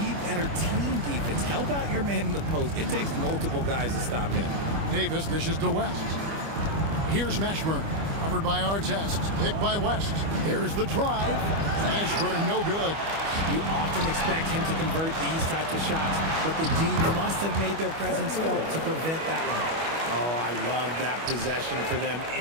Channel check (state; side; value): late; left; 25 ms